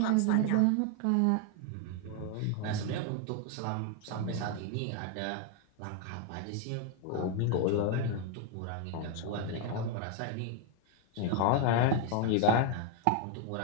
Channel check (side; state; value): both; different; correlation 0.01